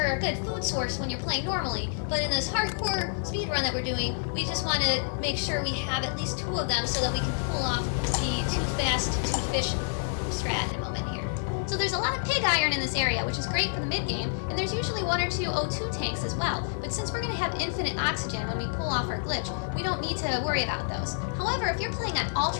a good food source when you're playing normally, but in this hardcore speedrun that we're doing, we just want to make sure we have at least 2 of them so that we can pull off the too fast, too fish strat in a moment here. So there's a lot of pig iron in this area, which is great for the mid-game, and there's usually 1 or 2 O2 tanks as well, but since we're going to have infinite oxygen when we pull off our glitch, we don't need to worry about those. However, if you're playing on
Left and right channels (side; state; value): right; silent; 55 dB below the other